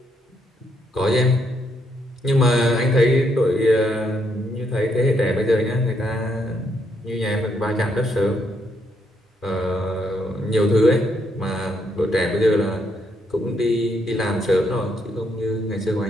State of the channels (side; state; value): both; normal; correlation 0.75